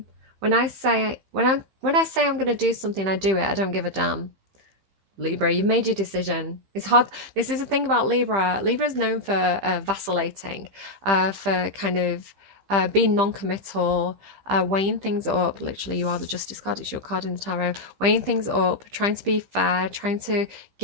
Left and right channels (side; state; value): left; late; 15 ms